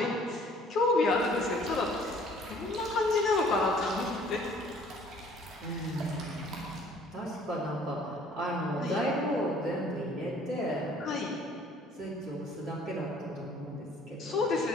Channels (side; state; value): both; normal; correlation 0.56